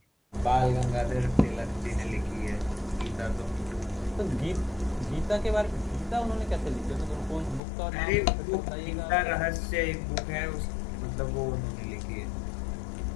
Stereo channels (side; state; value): right; drops out; at 7.6 s